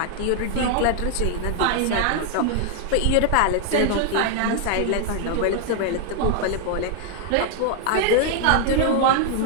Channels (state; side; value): different; both; correlation 0.00